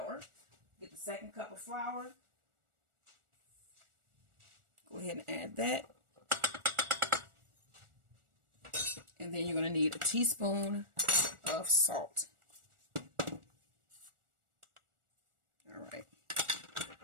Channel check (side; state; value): left; late; 1.4 ms